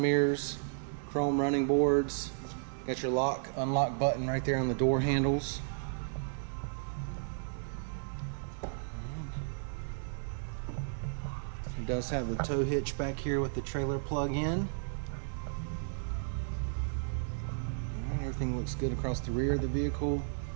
chrome running boards. Got your lock, unlock button right there on the door handles. It does have the tow hitch back here with the trailer plug-in. Everything looks good across the rear of the vehicle.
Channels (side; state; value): left; silent; digital silence